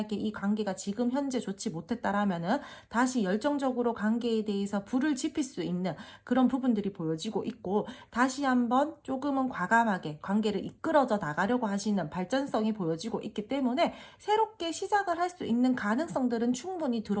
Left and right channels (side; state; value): both; identical; correlation 1.00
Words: 이 관계가 지금 현재 좋지 못했다라면은 다시 열정적으로 관계에 대해서 불을 지필 수 있는 그런 부분들이 보여지고 있고, 다시 한번 조금은 과감하게 관계를 이끌어져 나가려고 하시는 발전성이 보여지고 있기 때문에 새롭게 시작을 할 수 있는 가능성들은 충분히